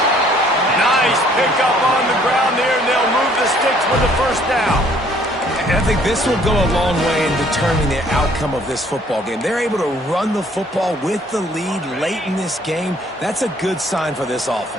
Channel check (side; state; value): both; normal; correlation 0.61